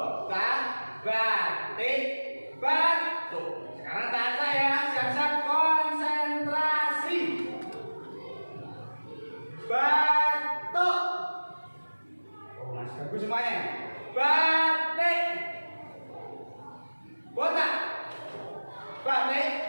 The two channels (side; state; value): both; inverted; correlation -1.00